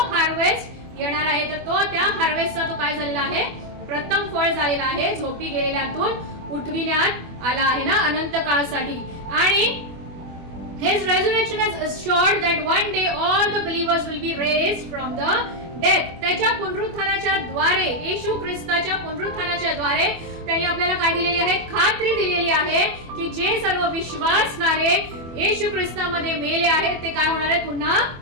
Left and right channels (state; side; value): late; left; 24 ms